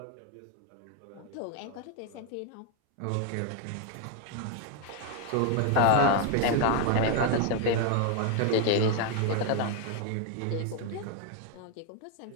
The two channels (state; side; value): different; both; correlation 0.01